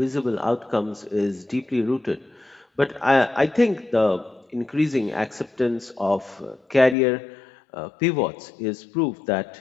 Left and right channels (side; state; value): right; drops out; at 7.0 s